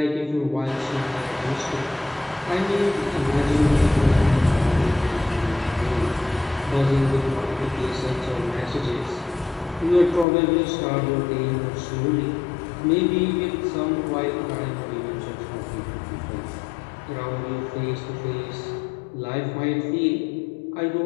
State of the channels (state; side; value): drops out; right; at 10.2 s